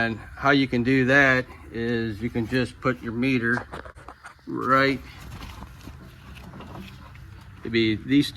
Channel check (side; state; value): both; identical; correlation 1.00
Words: how you can do that is you can just put your meter right, it'd be these